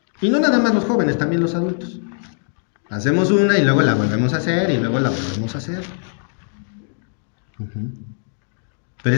Y no nada más los jóvenes, también los adultos. Hacemos una y luego la volvemos a hacer y luego la volvemos a hacer. Pero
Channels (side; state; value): right; silent; 65 dB below the other